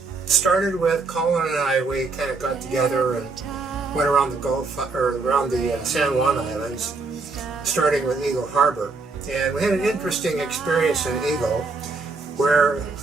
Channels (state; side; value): quieter; left; 4.0 dB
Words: Started with Colin and I. We kind of got together and went around the Gulf, or around the San Juan Islands, starting with Eagle Harbor. And we had an interesting experience in Eagle, where